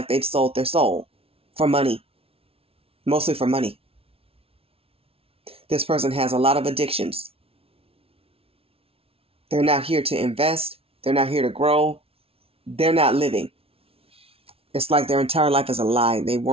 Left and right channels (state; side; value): late; left; 0.27 ms